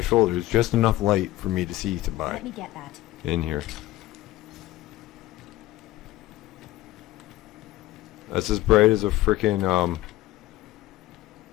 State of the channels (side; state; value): right; quieter; 16.4 dB